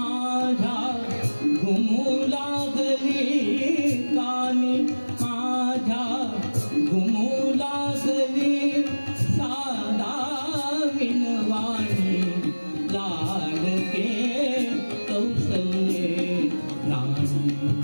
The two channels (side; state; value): both; inverted; correlation -1.00